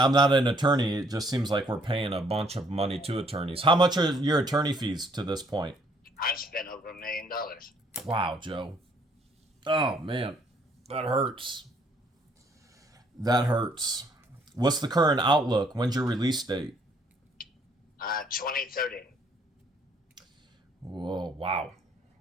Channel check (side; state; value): both; normal; correlation 0.65